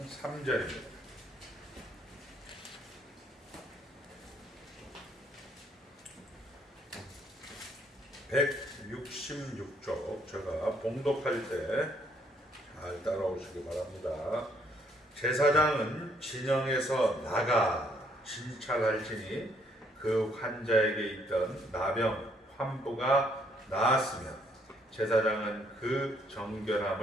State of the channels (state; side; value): normal; both; correlation 0.68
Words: 3절입니다. (166쪽) 제가 봉독할 때 잘 따라오시기 바랍니다. 제사장은 진영에서 나가 진찰할지니 그 환자에게 있던 나병 환부가 나았으면 제사장은 그